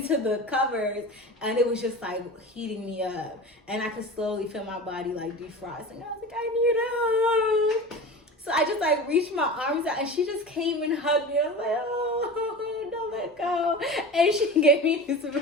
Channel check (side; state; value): both; normal; correlation 0.32